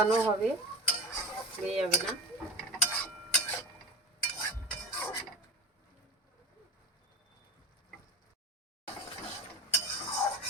হবে, পুড়ে যাবে না।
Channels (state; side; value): normal; both; correlation 0.30